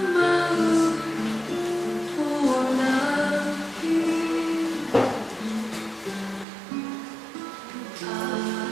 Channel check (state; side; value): drops out; left; at 6.5 s